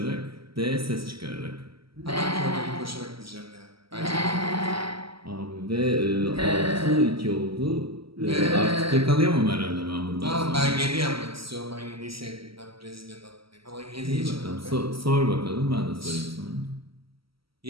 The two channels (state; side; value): late; left; 0.75 ms